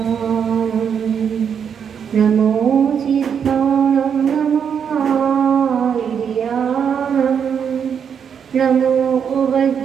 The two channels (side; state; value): left; quieter; 7.5 dB